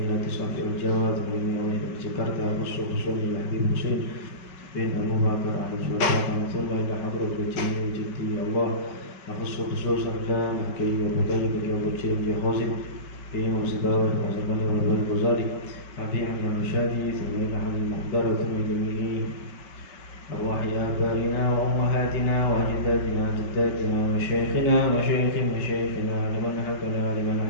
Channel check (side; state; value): right; late; 5.3 ms